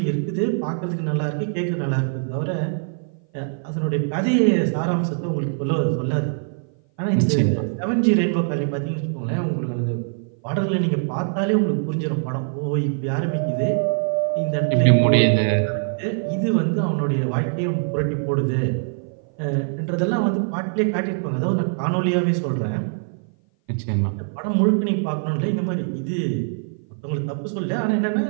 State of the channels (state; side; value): silent; left; 57 dB below the other